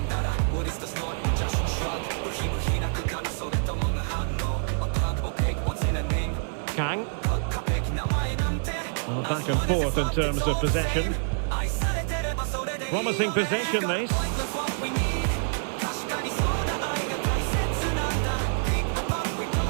Kang. Well, back and forth in terms of possession. Promising possession, this.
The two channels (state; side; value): silent; left; digital silence